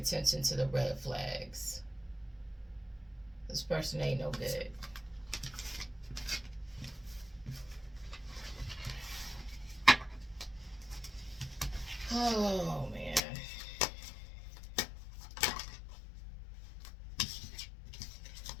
to the red flags. This person ain't no good. Oh, man.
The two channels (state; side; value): drops out; right; at 13.2 s